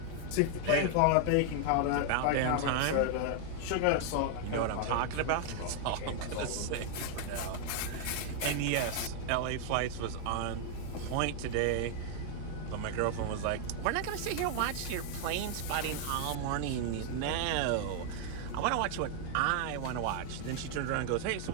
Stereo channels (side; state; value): both; different; correlation 0.00